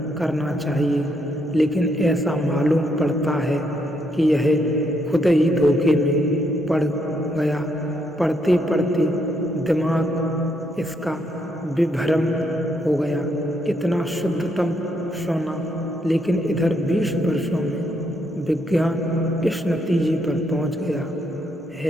करना चाहिए, लेकिन ऐसा मालूम पड़ता है कि यह खुद ही धोखे में पड़ गया। पढ़ते पढ़ते दिमाग इसका विभ्रम हो गया। इतना शुद्धतम सोना, लेकिन इधर 20 वर्षों में विज्ञान इस नतीजे पर पहुंच गया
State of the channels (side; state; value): both; normal; correlation 0.75